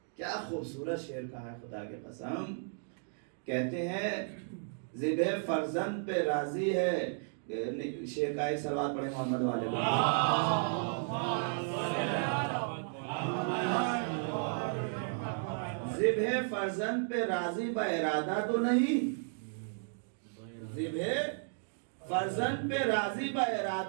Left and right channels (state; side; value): silent; left; digital silence